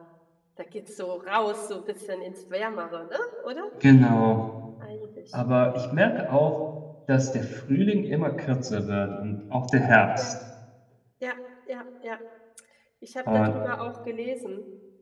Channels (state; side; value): identical; both; correlation 1.00